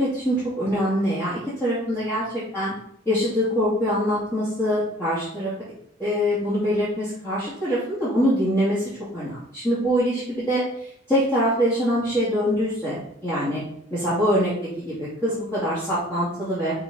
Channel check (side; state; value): both; normal; correlation 0.53